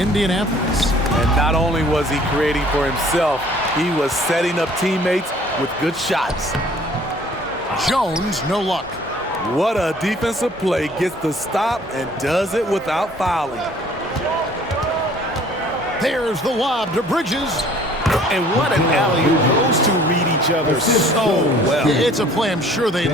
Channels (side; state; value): both; normal; correlation 0.54